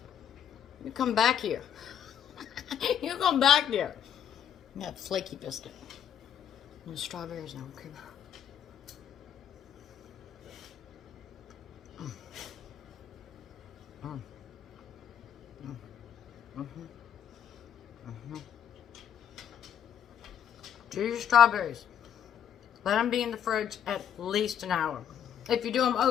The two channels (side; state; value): right; quieter; 9.0 dB